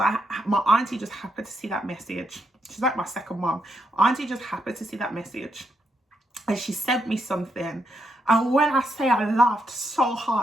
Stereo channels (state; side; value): normal; both; correlation 0.79